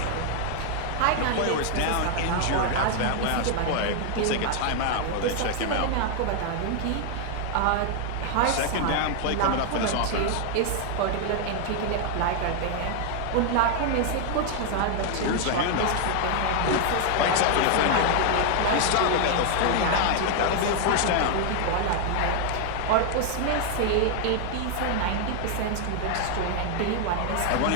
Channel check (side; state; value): both; different; correlation 0.00